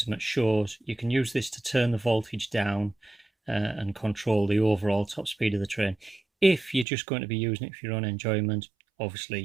them at shows, you can use this to turn the voltage down and control the overall top speed of the train. If you're just going to be using it for your own enjoyment,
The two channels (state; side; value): drops out; left; at 6.9 s